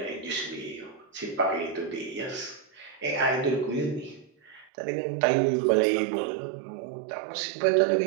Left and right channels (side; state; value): left; drops out; at 4.7 s